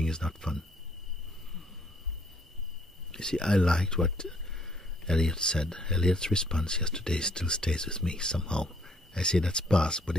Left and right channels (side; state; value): both; normal; correlation 0.65